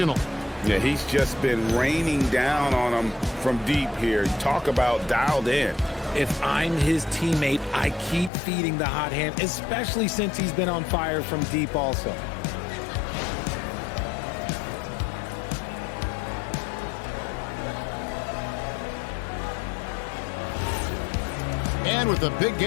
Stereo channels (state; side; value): drops out; right; at 8.3 s